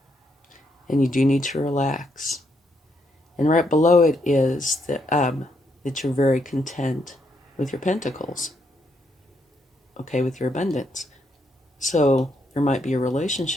and you do need to relax. And right below it is that you're very content with your pentacles, okay, with your abundance. So there might be a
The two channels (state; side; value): normal; both; correlation 0.76